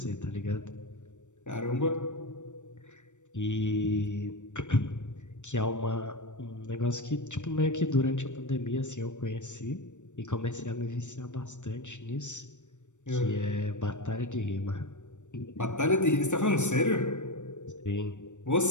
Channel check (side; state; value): right; late; 0.85 ms